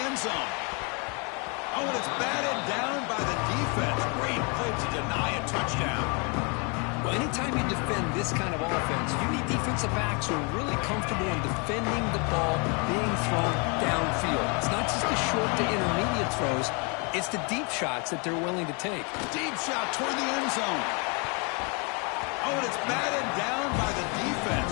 end zone. Oh, and it's batted down by the defense. Great play to deny a touchdown. Well, anytime you defend this kind of offense, you need defensive backs who are really comfortable in defending the ball being thrown downfield. It's not just the short to intermediate throws. It's the deep shots that they're willing to take. Deep shot toward the end zone. Oh, and it's batted down by the defense.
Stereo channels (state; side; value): quieter; right; 33.4 dB